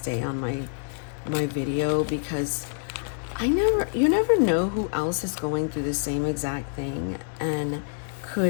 on my video because you never know who else is going through the same exact thing and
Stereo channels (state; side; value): silent; right; digital silence